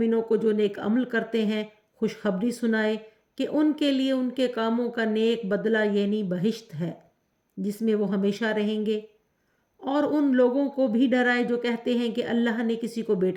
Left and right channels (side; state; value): both; identical; correlation 1.00